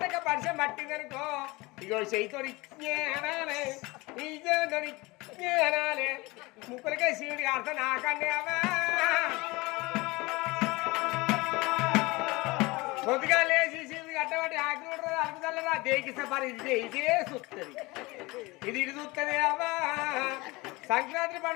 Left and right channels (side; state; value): right; quieter; 23.1 dB